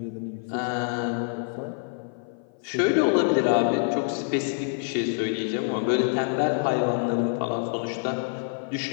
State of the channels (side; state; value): right; silent; 55 dB below the other